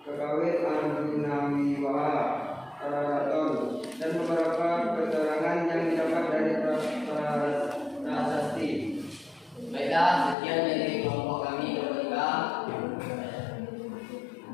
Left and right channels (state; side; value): drops out; right; at 10.4 s